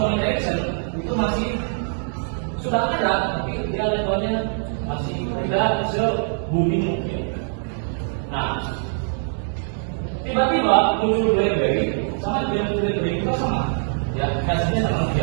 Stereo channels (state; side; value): silent; left; 63 dB below the other